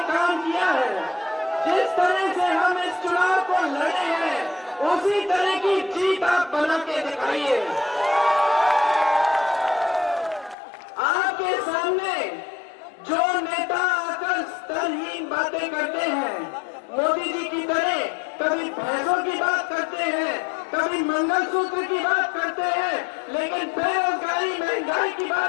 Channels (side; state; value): right; drops out; at 10.6 s